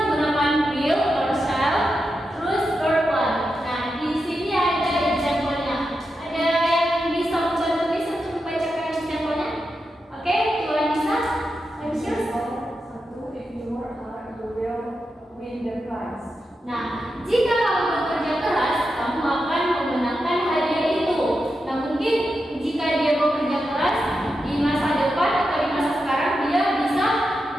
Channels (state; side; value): normal; both; correlation 0.88